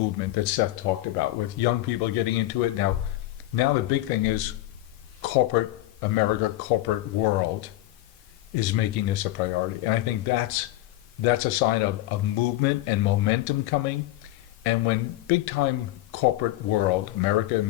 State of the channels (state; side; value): quieter; right; 16.0 dB